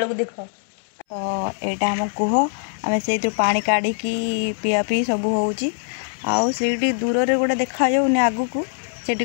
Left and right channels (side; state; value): right; silent; 64 dB below the other